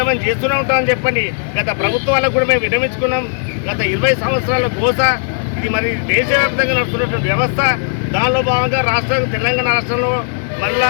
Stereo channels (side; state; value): right; silent; digital silence